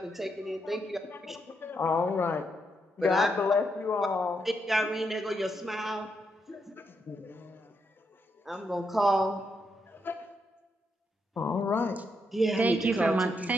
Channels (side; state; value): both; normal; correlation 0.80